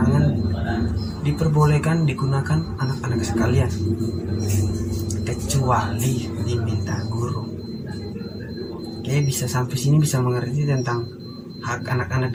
diperbolehkan digunakan anak-anak sekalian, kecuali diminta guru. Oke, bisa sampai sini bisa mengerti tentang hak anak-anak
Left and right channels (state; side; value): identical; both; correlation 1.00